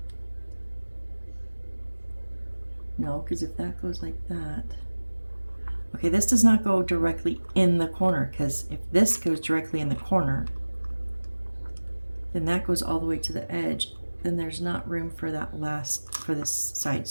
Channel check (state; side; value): inverted; both; correlation -1.00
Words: No, because if that goes like that... Okay, this does not go directly in the corner, because if this goes directly in the corner, then that goes all the way to the edge. Then there's not room for that for this side.